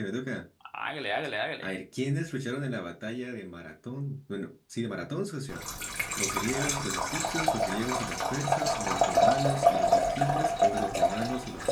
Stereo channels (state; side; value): identical; both; correlation 1.00